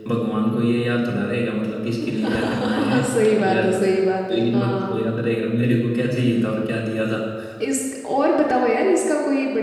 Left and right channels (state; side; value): identical; both; correlation 1.00